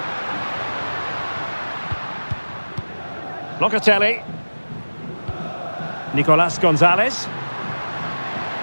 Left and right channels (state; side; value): inverted; both; correlation -1.00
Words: Locatelli. Nicolas Gonzalez.